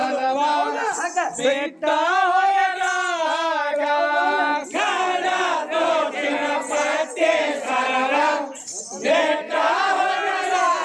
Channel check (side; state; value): both; identical; correlation 1.00